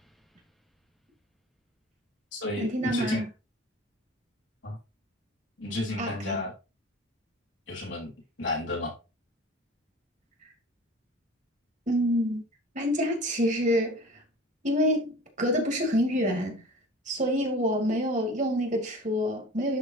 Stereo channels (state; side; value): normal; both; correlation 0.41